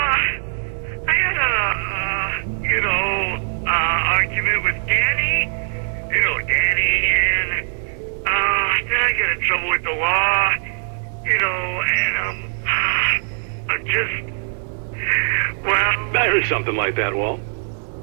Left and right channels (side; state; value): left; silent; digital silence